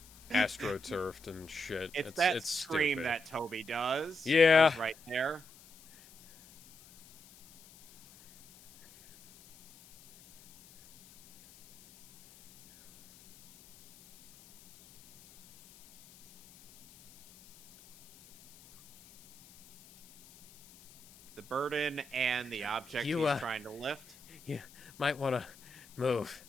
astroturfed and shit. It's that scream stupid. that Toby does. Yeah, right there. The burden and the object he's trying to lift. You might want to move,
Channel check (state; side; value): noise; left; hiss, 23 dB below the sound